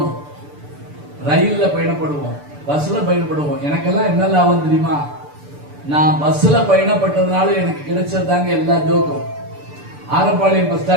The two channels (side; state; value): left; late; 6.9 ms